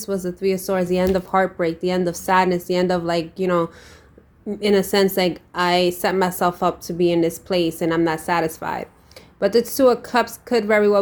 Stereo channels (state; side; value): identical; both; correlation 1.00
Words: was the Three of Swords, the end of heartbreak, the end of sadness, the end of, like, you know, in a sense, like, I set myself up to be in this place and I'm not satisfied. But the Two of Cups could very well